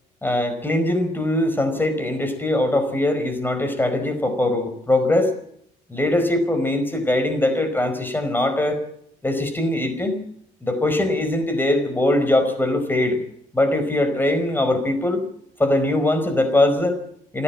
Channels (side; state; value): both; normal; correlation 0.75